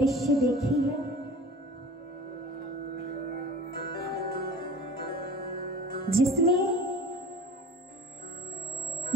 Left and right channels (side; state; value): both; normal; correlation 0.40